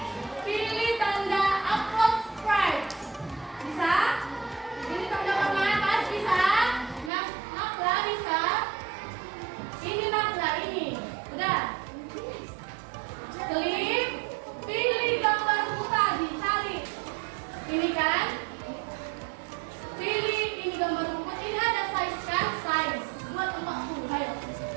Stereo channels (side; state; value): left; drops out; at 7.1 s